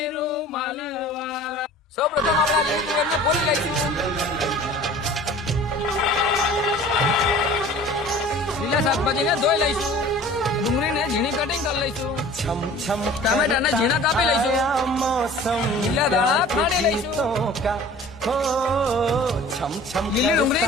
રૂમાલ વાળા. સૌ પ્રથમ આપણે આ લીલી તુવેરને ફોલી લઈશું. લીલા શાકભાજીને ધોઈ લઈશું. ડુંગળીને ઝીણી કટિંગ કરી લઈશું. ટામેટાને ઝીણા કાપી લઈશું. લીલા દાણા ખાંડી લઈશું. લીલી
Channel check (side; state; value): both; normal; correlation 0.45